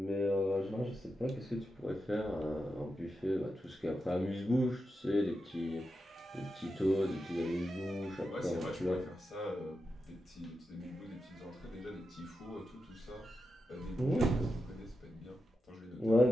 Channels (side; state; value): both; normal; correlation 0.88